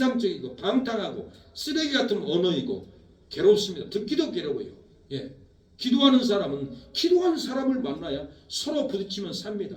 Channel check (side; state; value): both; identical; correlation 1.00